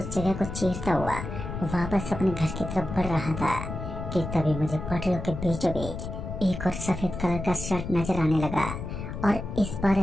जगह को चीरता हुआ वापस अपने घर की तरफ बढ़ रहा था कि तभी मुझे पटरियों के बीचों बीच एक और सफेद कलर का शर्ट नजर आने लगा। और इस बार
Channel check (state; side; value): noise; left; rumble, 7 dB below the sound